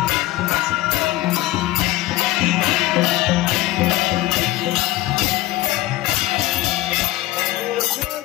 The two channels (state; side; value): quieter; right; 16.9 dB